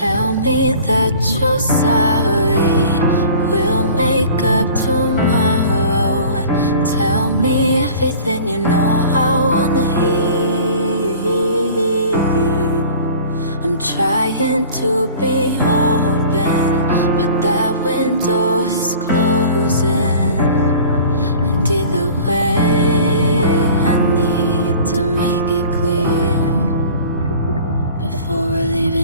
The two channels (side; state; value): both; inverted; correlation -0.44